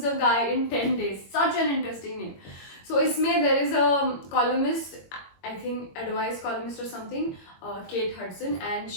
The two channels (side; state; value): right; late; 22 ms